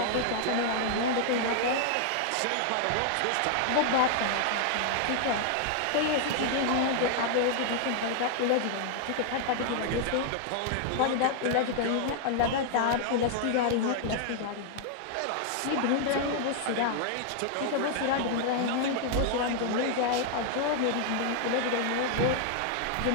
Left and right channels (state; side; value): different; both; correlation 0.00